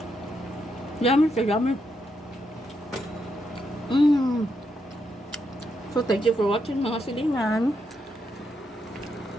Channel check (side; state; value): both; normal; correlation 0.80